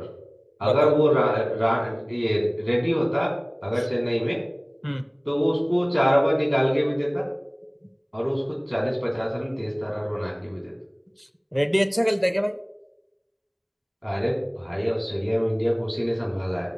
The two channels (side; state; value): both; identical; correlation 1.00